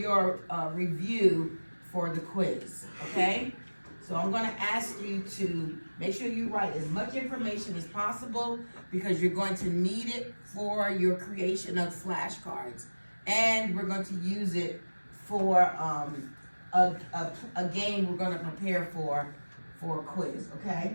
review for the quiz, okay? So I'm going to ask you to make sure you write as much information as possible because you're going to need it for your creation of flashcards. And we're going to use it for a game we're going to prepare for a quiz,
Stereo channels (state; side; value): inverted; both; correlation -1.00